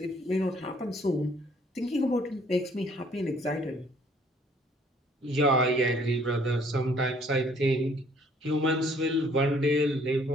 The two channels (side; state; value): both; normal; correlation 0.61